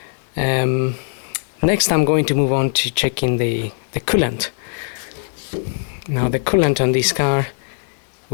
Next I'm going to move on to checking the coolant. Now the coolant on this car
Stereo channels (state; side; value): silent; right; 62 dB below the other